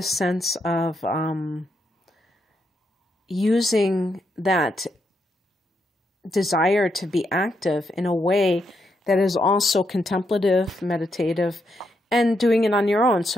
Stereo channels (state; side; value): normal; both; correlation 0.80